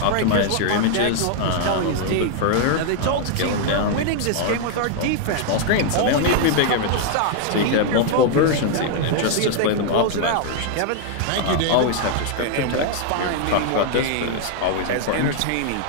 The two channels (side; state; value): both; different; correlation 0.00